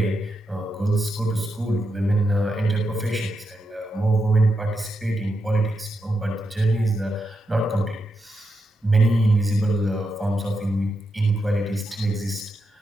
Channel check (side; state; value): both; normal; correlation 0.85